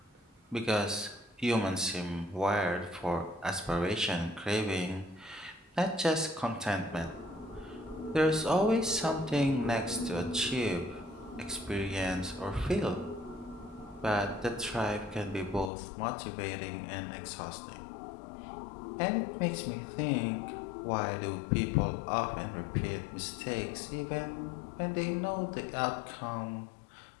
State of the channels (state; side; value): drops out; right; at 15.7 s